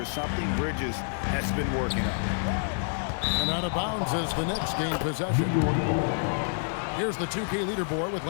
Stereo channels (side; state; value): right; silent; digital silence